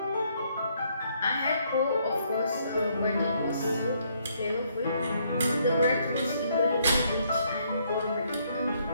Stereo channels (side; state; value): both; inverted; correlation -0.70